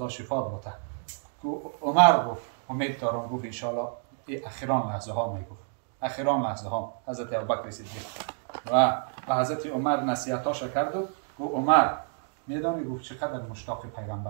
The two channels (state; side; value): silent; left; 59 dB below the other